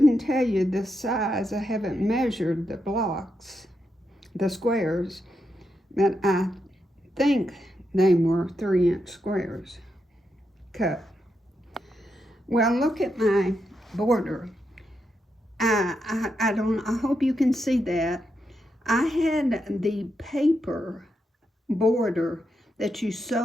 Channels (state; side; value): normal; both; correlation 0.84